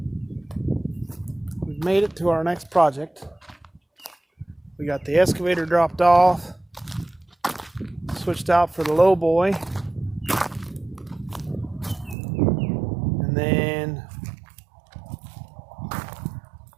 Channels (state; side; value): drops out; left; at 12.2 s